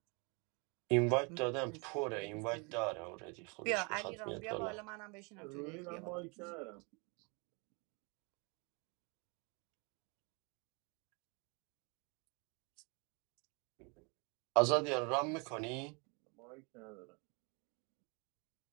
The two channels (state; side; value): quieter; left; 32.2 dB